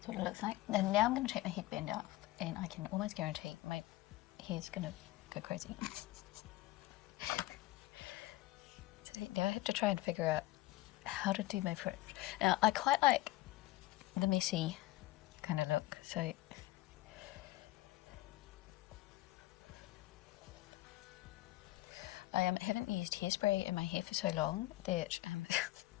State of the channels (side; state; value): right; quieter; 17.6 dB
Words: what it looks like. And now I'm going to take my headband off, and I can almost guarantee my hair's going to go crazy. So now I have to try and figure out how to do my fringe. Now I quite like the messy kind of look, so I haven't used hairspray in my hair for so long that